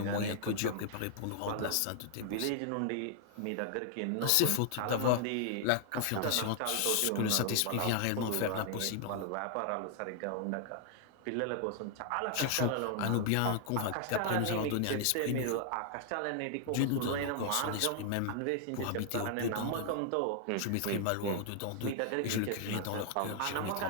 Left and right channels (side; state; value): both; different; correlation 0.00